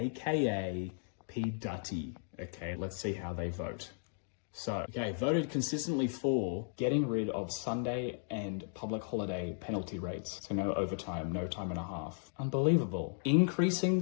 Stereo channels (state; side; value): silent; right; digital silence